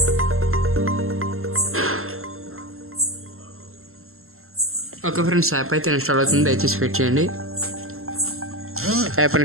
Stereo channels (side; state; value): left; late; 0.62 ms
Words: Okay friends, app అయితే ఇన్స్టాల్ అవుతుంది. దయచేసి వెయిట్ చేయండి. App